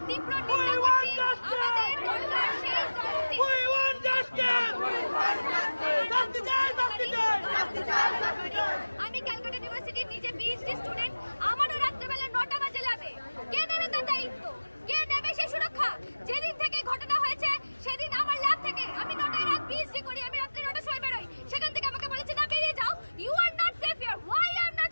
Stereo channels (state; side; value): inverted; both; correlation -1.00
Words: তীব্র নিন্দা করছি। আমাদের দরকার সেই আমি ক্যালকাটা ইউনিভার্সিটির নিজে পিএইচডি স্টুডেন্ট, আমারও রাত্রেবেলা 9টা বাজে ল্যাবে। কে নেবে তার দায়িত্ব? কে নেবে সেই সুরক্ষা? যেদিন থেকে ঘটনা হয়েছে সেদিন আমার ল্যাব থেকে আমি 9টায় রাত পিএইচডি করি, আমি রাত্রে 9টার সময় বেরোই, সেখান থেকে আমাকে বলেছে না বেরিয়ে যাও। You are not safe here. Why I am